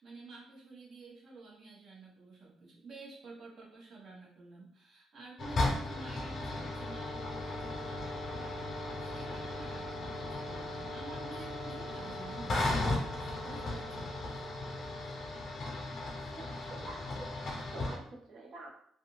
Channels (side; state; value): both; normal; correlation 0.82